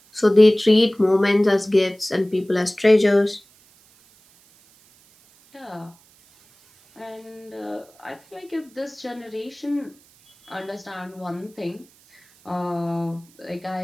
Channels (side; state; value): right; noise; hiss, 30 dB below the sound